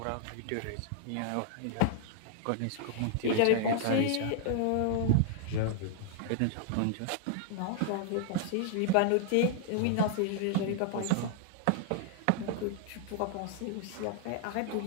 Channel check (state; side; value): different; both; correlation -0.01